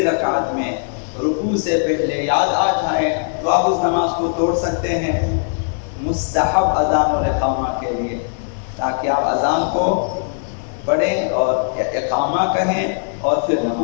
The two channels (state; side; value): silent; right; 66 dB below the other